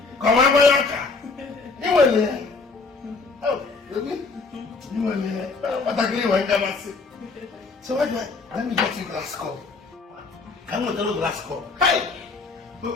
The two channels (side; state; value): right; quieter; 4.1 dB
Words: come on, Boyanka. You were there. Oh, really? You were there. What I agree with you. So what do I? Let me get you glass cup. I'm going to do glass cup. Hey!